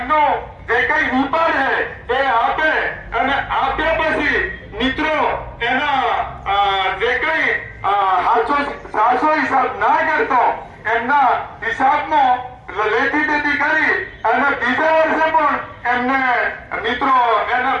જે કઈ વિપાર છે એ આપે અને આપ્યા પછી મિત્રો એના જે કઈ સાચો હિસાબ ના કરતો એમના હિસાબમાં લેતી દેતી કરી અને બીજા વર્ષે પણ એમને મિત્રો એના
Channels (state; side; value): identical; both; correlation 1.00